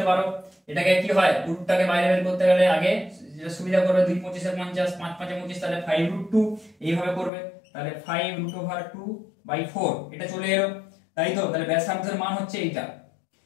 পারো। এটাকে কি হয় রুটটাকে বাইরে বের করতে গেলে আগে যেটা সুবিধা করবে 2 25 50 5 5 25, তাহলে 5√2 এইভাবে করবে, তাহলে 5√2/4 এটা চলে এলো, তাই তো। তাহলে ব্যাসার্ধের মান হচ্ছে এইটা।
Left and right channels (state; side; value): drops out; right; at 7.3 s